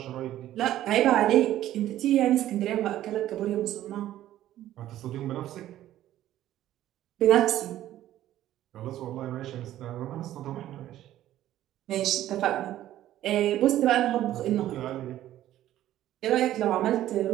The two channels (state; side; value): quieter; left; 13.2 dB